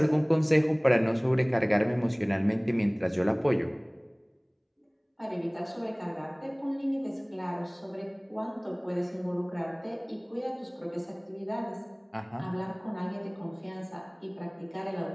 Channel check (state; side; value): identical; both; correlation 1.00